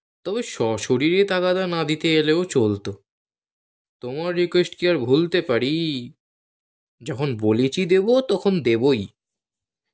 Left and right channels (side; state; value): both; identical; correlation 1.00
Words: তবে সশরীরে তাগাদা না দিতে এলেও চলতো। তোমার রিকোয়েস্ট কি আর ভুলতে পারি? যখন বলেছি দেব তখন দেবই।